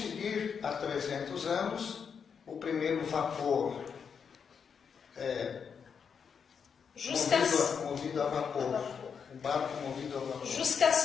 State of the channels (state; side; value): quieter; right; 6.6 dB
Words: há 300 anos, o primeiro vapor movido a vapor. O barco movido a vapor. Jusqu'à